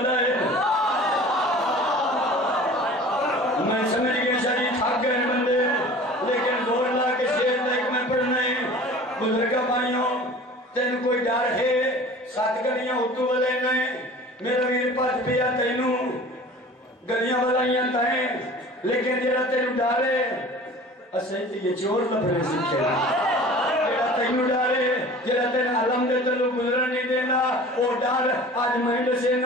ہے میں سمجھ گئے شریف تھک گئے بندے لیکن زور لا کے شیر تک میں پڑھنے بزرگا بھائیوں تین کوئی ڈر ہے ساتھ گلیاں اتو والے نے میرا ویر پاس پیا تینوں گلیاں والائیاں تائیں لیکن جیرا تینوں ڈارے اسے یہ چور لبنے سکھے جیرا تینوں ڈارے جیرا تین علم دے تلو گزرن نہیں دینا وہ ڈار آج مہنڈ سے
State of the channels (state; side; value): normal; both; correlation 0.43